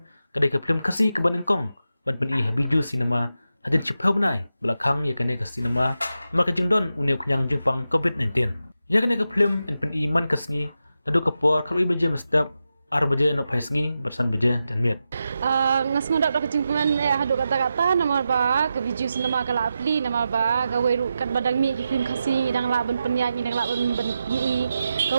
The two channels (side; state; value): both; inverted; correlation -0.89